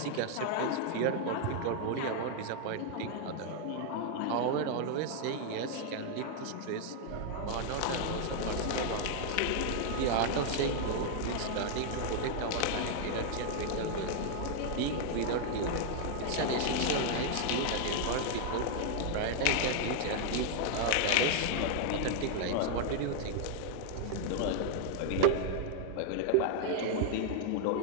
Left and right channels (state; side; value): different; both; correlation 0.00